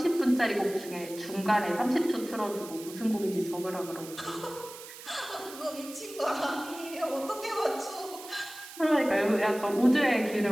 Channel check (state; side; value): noise; right; hiss, 15 dB below the sound